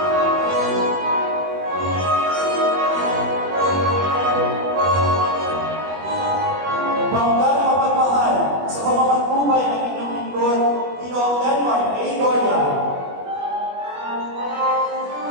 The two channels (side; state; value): left; late; 21 ms